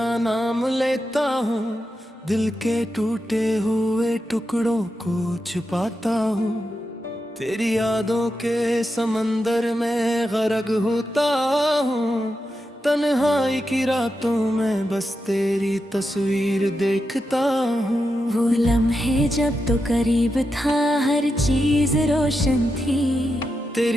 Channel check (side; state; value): both; normal; correlation 0.87